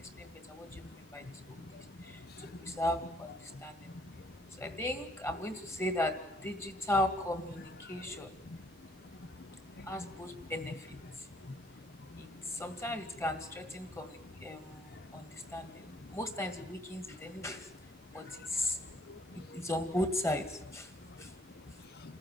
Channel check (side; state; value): both; normal; correlation 0.63